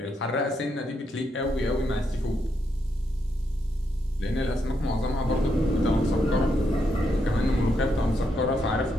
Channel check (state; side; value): normal; both; correlation 0.79